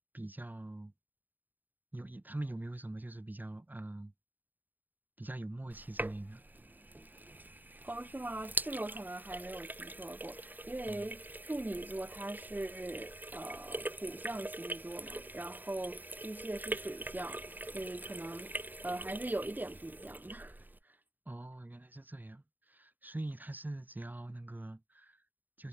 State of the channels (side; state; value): left; late; 0.088 ms